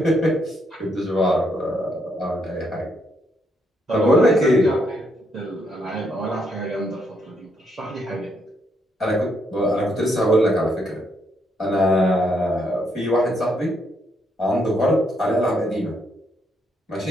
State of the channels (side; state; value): both; normal; correlation 0.75